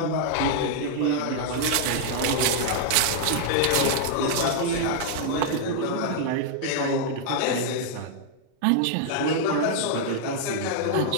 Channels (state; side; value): different; both; correlation -0.01